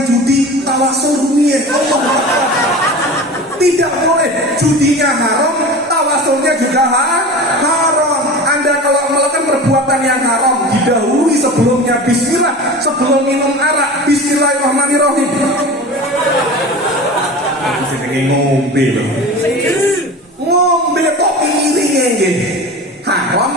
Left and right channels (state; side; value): normal; both; correlation 0.33